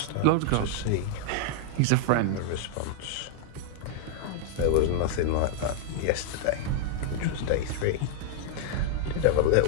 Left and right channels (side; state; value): both; different; correlation 0.00